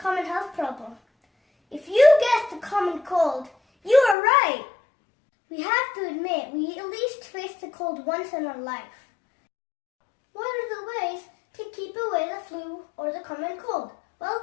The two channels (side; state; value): right; drops out; at 4.2 s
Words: health problem? If you guessed the common cold, you are right. We have to admit we at least face the cold once in our life. What are the ways to keep away the flu or the common cold? Well,